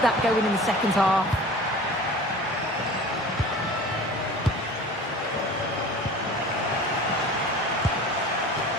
that going in the second half.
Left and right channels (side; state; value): both; normal; correlation 0.40